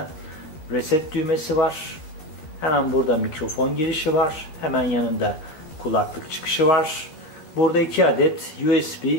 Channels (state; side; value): late; right; 13 ms